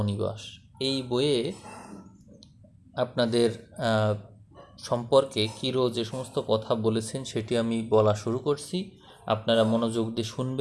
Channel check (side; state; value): both; identical; correlation 1.00